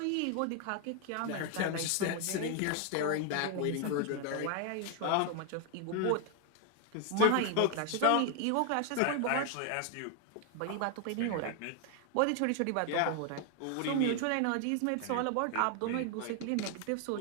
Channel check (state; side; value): different; both; correlation 0.00